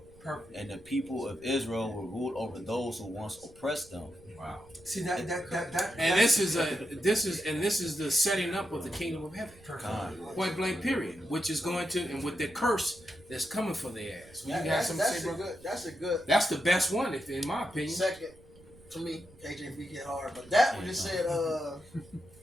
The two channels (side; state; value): right; noise; rumble, 24 dB below the sound